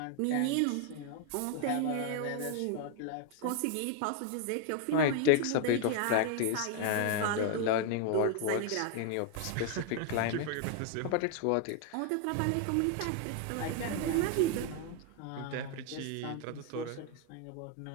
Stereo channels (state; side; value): different; both; correlation 0.00